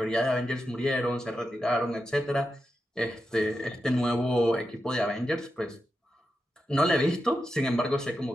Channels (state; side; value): normal; both; correlation 0.88